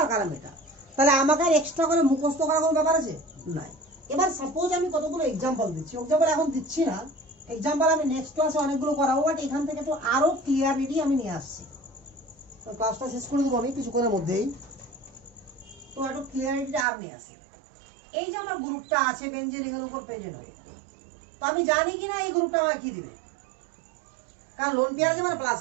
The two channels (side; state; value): left; drops out; at 16.9 s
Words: আর কারা মেটা। তাহলে আমাকে আর এক্সট্রা করে মুখস্থ করার কোনো ব্যাপার আছে? নাই। এবার সাপোজ আমি কতগুলো এক্সাম্পল দিচ্ছি, এক্সাম্পল এখন দিচ্ছি না, এক্সাম্পল আমি নেক্সট ক্লাসে অনেকগুলো করাবো, বাট এখান থেকে তো আরো ক্লিয়ারিটি আমি নিয়ে আসছি। ক্লাসটা শেষ করে দেবো আমি কিছুক্ষণের মধ্যেই। তো একটু ক্লিয়ারিটিটা আর নিয়ে আসি। এই যে আমার গ্রুপটা আছে বেঞ্জিন রিংয়ের উপর প্রেজেন্ট হয়ে, তো আমি জানি কিনা এই গ্রুপটা আমাকে কি দিবে, কারণ লোন পেয়ার আছে মানে প্লাস